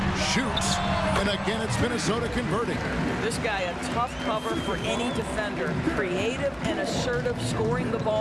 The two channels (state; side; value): identical; both; correlation 1.00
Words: shoots. And again, it's Minnesota converting. This guy a tough cover for any defender. Creative and assertive scoring the